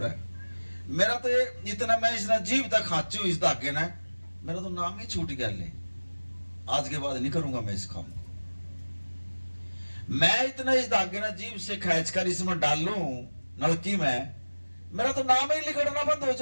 है। मेरा तो ये इतना, मैं इस जीव तक खाची हूं इस धागे ने, मेरा तो नाम ही छूट गया, ले आज के बाद नहीं करूंगा मैं इस काम को। मैं इतना इस धागे ने जीव से खींच कर इसमें डाल लूं नलकी में, मेरा तो नाम ही लिखना बंद हो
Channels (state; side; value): inverted; both; correlation -1.00